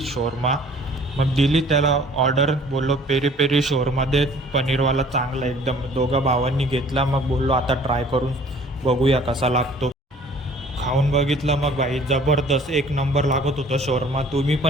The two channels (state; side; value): normal; both; correlation 0.53